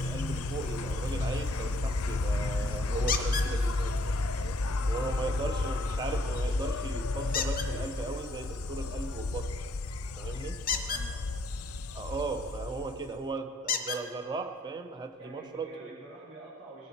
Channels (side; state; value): both; normal; correlation 0.66